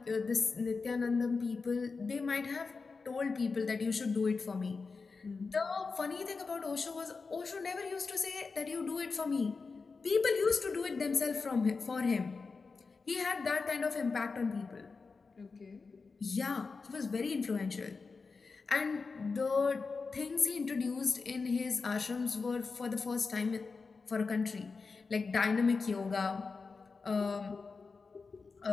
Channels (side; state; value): right; quieter; 4.5 dB